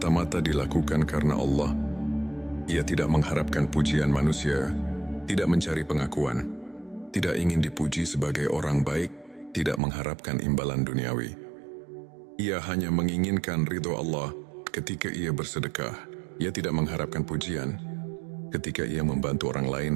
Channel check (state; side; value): drops out; left; at 9.8 s